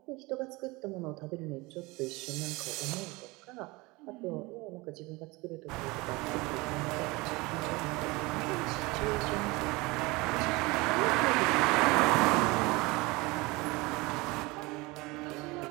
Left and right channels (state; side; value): quieter; left; 23.6 dB